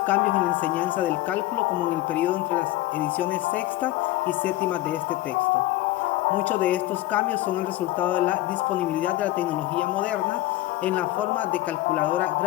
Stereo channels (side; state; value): right; quieter; 16.9 dB